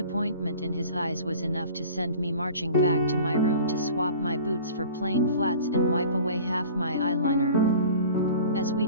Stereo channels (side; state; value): both; inverted; correlation -0.43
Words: in his eyes was enough to send me marching back to my room to swap my boots for plain flats and wipe away half my eyeliner. As we